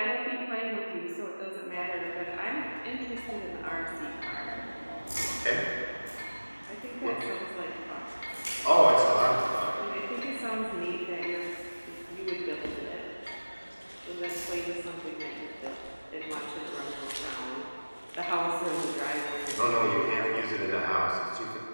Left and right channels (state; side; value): inverted; both; correlation -1.00